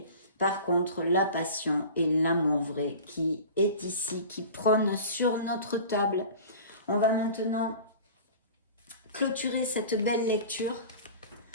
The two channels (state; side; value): inverted; both; correlation -0.38